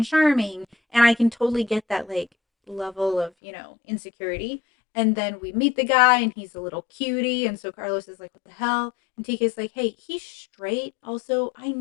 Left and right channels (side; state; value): right; drops out; at 3.3 s